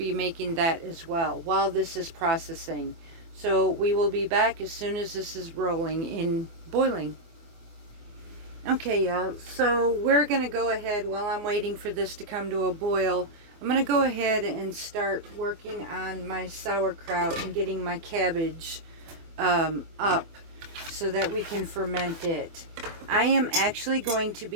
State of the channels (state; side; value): late; left; 24 ms